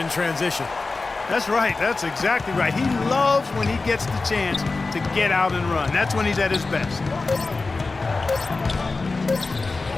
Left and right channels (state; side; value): quieter; right; 3.7 dB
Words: transition. That's right. That's exactly right. He loves when he gets the chance to get out and run. That's when he's at his best.